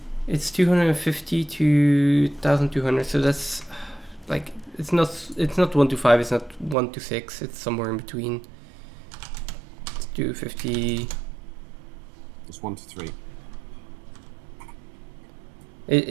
250 to 1200. So that's like it's not 1 to 5. It's not 1 to 6. It's somewhere in between. It's 250. It's 1 to 3. It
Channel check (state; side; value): drops out; left; at 6.8 s